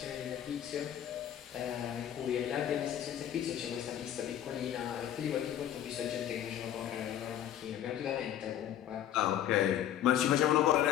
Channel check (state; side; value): quieter; right; 10.9 dB